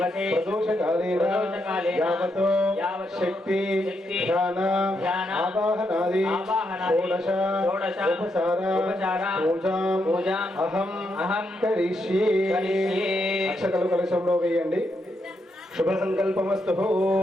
ప్రదోషకాలేన యావతో శక్తి ధ్యాన ఆవాహనాది షోడశ ఉపచార పూజాం అహం కరిష్యే. అక్షతలు కలశంలో వేయండి. శుభ సంకల్పమస్తు.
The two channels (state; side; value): normal; both; correlation 0.80